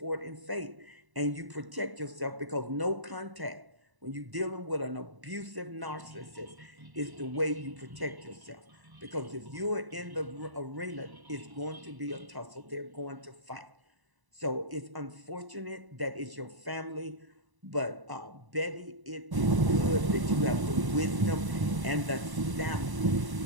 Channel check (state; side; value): late; left; 1.0 ms